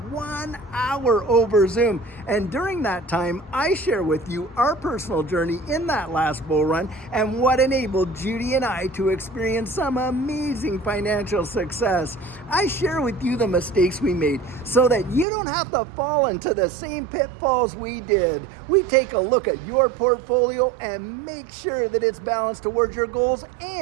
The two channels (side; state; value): left; drops out; at 15.2 s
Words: hour over Zoom. And during that time, I share with you our personal journey in that last bull run and what enabled Judy and I to experience some amazing financial success. I share with you the mistakes we made so that you don't have to fall into the same pitfalls we did. We take a look at your portfolio and make sure that it's balanced towards your goals,